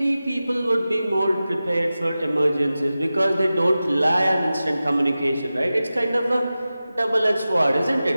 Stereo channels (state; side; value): inverted; both; correlation -0.95